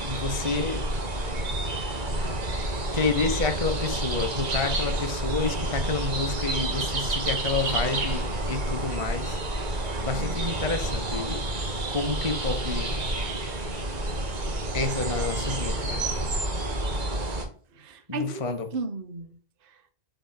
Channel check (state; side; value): late; left; 2.2 ms